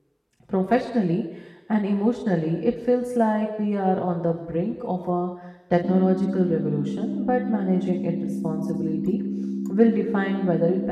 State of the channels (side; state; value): both; identical; correlation 1.00